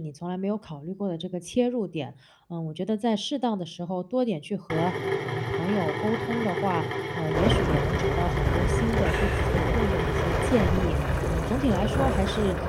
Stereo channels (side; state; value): both; identical; correlation 1.00